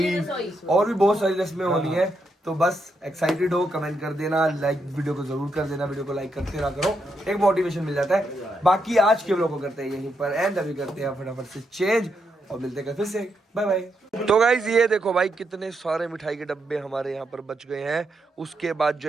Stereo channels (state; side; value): normal; both; correlation 0.81